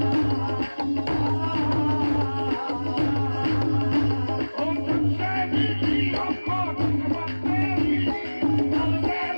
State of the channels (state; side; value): inverted; both; correlation -1.00